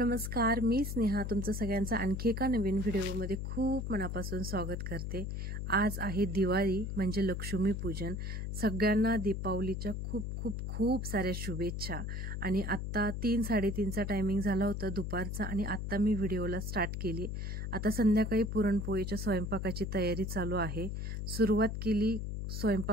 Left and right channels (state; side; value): noise; left; hum, 4 dB below the sound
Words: मी स्नेहा तुमचं सगळ्यांचं आणखी एका नवीन व्हिडिओमध्ये खूप मनापासून स्वागत करते। आज आहे दिवाळी म्हणजे लक्ष्मीपूजन। सगळ्यांना दीपावलीच्या खूप खूप खूप साऱ्या शुभेच्छा। आणि आत्ता 3-3:30चा टायमिंग झाला होता दुपारचा आणि आत्ता मी व्हिडिओला स्टार्ट केली। आता संध्याकाळी पुरणपोळीच्या स्वयंपाकाची तयारी चालू आहे। सुरुवात केली